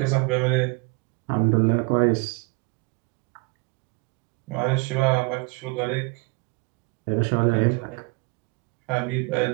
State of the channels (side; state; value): left; quieter; 28.2 dB